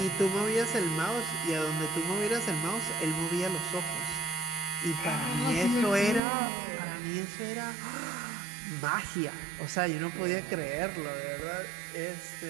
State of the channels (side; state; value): left; drops out; at 6.2 s